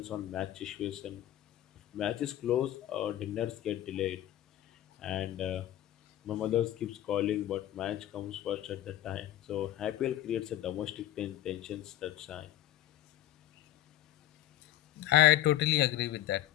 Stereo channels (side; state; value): right; quieter; 13.6 dB